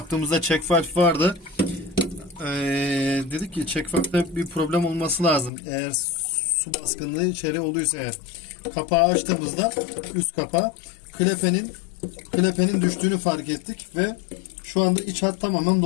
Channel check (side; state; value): right; drops out; at 5.5 s